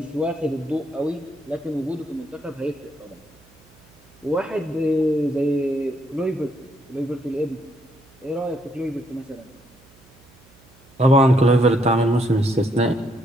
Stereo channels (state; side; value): noise; right; hum, 29 dB below the sound